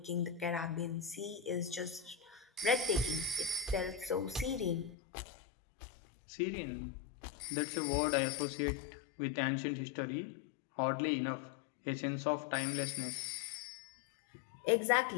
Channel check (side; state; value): right; drops out; at 5.0 s